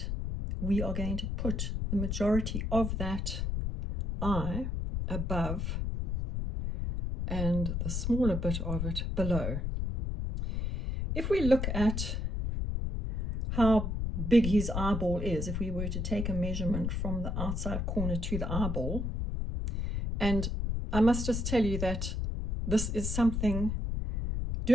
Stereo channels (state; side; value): noise; left; rumble, 2 dB below the sound